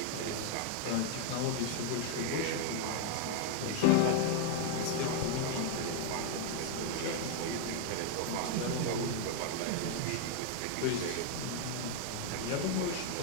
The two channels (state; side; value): different; both; correlation 0.00